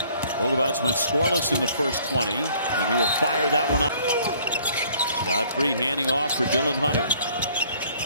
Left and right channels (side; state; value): both; inverted; correlation -0.58